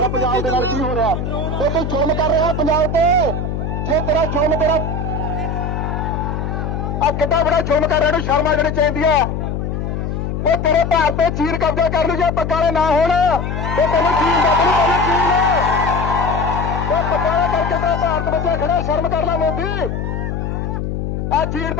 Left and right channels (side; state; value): left; noise; hum, 3 dB below the sound